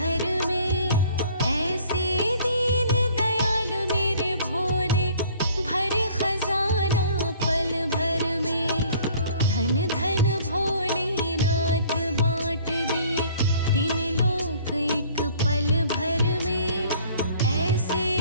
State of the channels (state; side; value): inverted; both; correlation -0.54